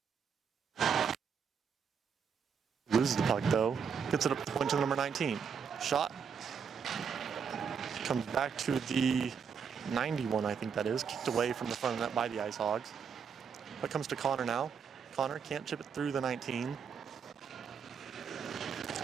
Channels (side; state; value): left; quieter; 6.6 dB